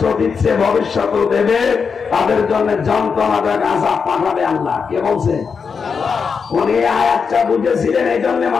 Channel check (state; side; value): quieter; right; 5.7 dB